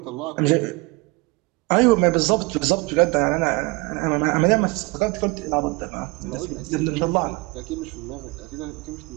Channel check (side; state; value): left; quieter; 24.8 dB